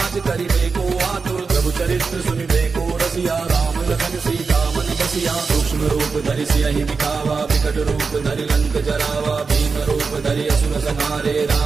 करिबे को आतुर। प्रभु चरित्र सुनिबे को रसिया राम लखन सीता मन बसिया। सूक्ष्म रूप धरि सियहि दिखावा विकट रूप धरि लंक जरावा। भीम रूप धरि असुर संहारे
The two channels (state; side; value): quieter; left; 4.8 dB